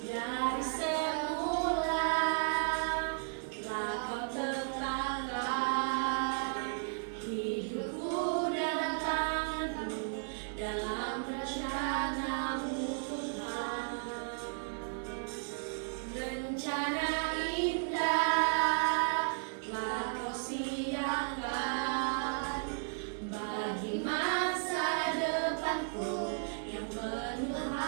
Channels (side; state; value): left; silent; digital silence